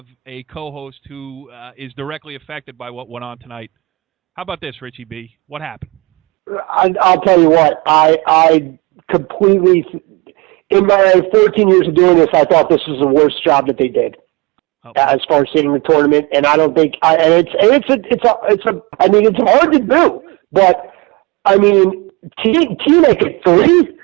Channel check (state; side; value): quieter; left; 25.0 dB